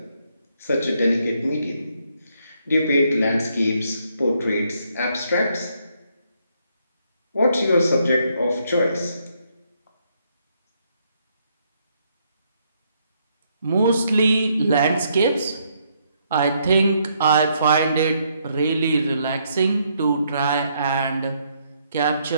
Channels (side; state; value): both; inverted; correlation -0.73